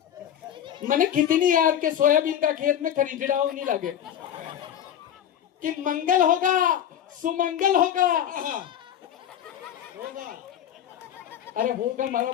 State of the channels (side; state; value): right; quieter; 10.1 dB